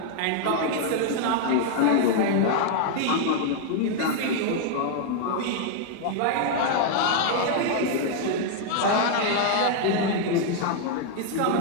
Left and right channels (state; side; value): different; both; correlation 0.00